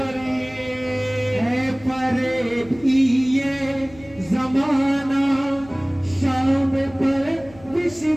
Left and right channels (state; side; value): noise; left; hum, 21 dB below the sound